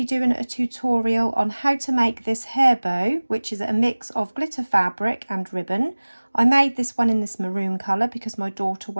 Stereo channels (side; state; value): both; inverted; correlation -1.00